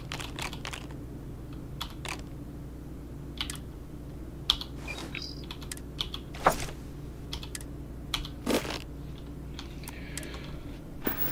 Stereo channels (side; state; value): both; identical; correlation 1.00